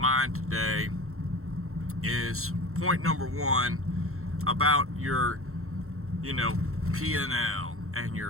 today is point number one about your, PNL and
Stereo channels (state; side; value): late; left; 0.63 ms